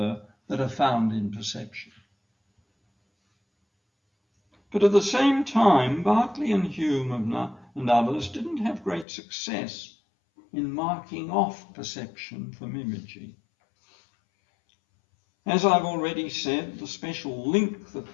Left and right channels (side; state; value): right; drops out; at 9.1 s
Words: that are found in perception. But at the same time, Berkeley and Hume and others didn't have great success in marking off perception from imaging. As I've already said, the special link that